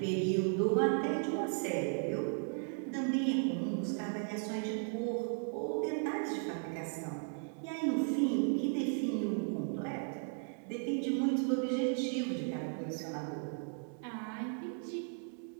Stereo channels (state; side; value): silent; left; 54 dB below the other